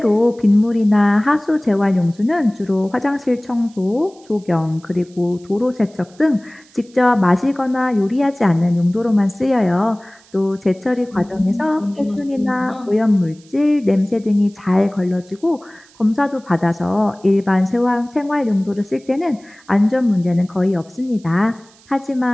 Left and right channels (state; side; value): noise; right; hiss, 28 dB below the sound